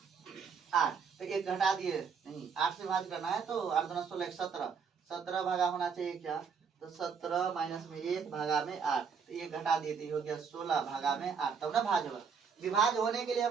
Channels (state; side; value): quieter; left; 6.1 dB